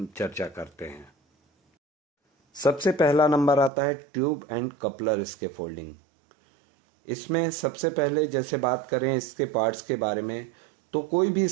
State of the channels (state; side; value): drops out; left; at 3.7 s